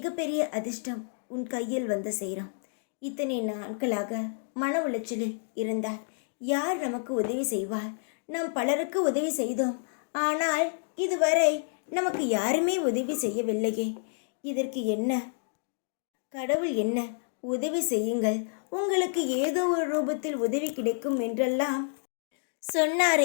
அதிர்ஷ்டம் உன் கையில் வந்து சேரும். இத்தனை நாட்களாக மன உளைச்சலில் இருந்தால் யார் நமக்கு உதவி செய்வார்? நாம் பலருக்கு உதவி செய்தோம், ஆனால் இதுவரை நமக்கு யாருமே உதவி செய்யவில்லையே. இதற்கு என்ன? கடவுள் என்ன உதவி செய்யுங்கள், உங்களுக்கு ஏதோ ஒரு ரூபத்தில் உதவி கிடைக்கும் என்றெல்லாம்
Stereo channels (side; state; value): right; silent; digital silence